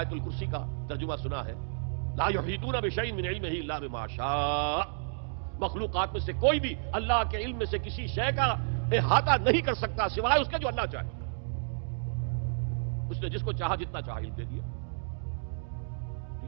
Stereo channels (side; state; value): left; silent; digital silence